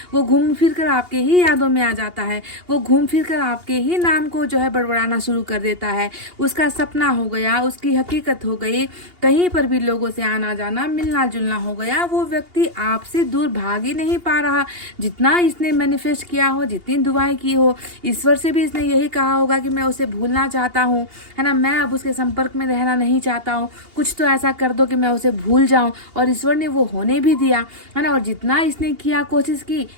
वो घूम फिर कर आपके ही यादों में आ जाता है, वो घूम फिर कर आपके ही नाम को जो है बड़बड़ाना शुरू कर देता है। उसका सपना हो गया, उसकी हकीकत हो गई, कहीं पर भी लोगों से आना जाना मिलना जुलना हो गया। वो व्यक्ति आपसे दूर भाग ही नहीं पा रहा, जितना इसने मैनिफेस्ट किया हो, जितनी दुआएं की हो, ईश्वर से भी इसने यही कहा होगा कि मैं उसे भूलना चाहता हूँ, है ना, मैं अब उसके संपर्क में रहना नहीं चाहता हूँ, कुछ तो ऐसा कर दो कि मैं उसे भूल जाऊं। और ईश्वर ने वो होने भी दिया, है ना। और जितना इसने किया, कोशिश की,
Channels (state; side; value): late; left; 2.8 ms